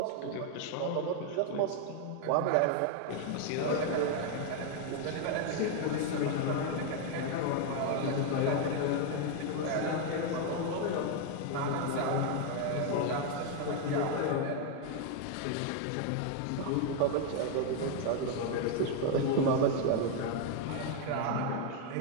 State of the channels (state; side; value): different; both; correlation 0.01